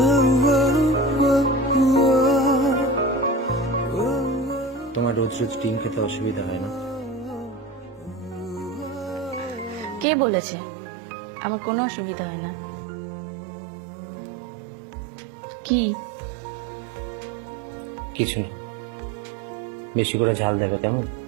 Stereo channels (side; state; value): left; drops out; at 10.1 s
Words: তোমার রোজ রোজ ডিম খেতে অসুবিধা হয় না? কে বলেছে আমার কোনো অসুবিধা হয় না? কি? কিছু না, বেশি করে ঝাল দেবে কেমন?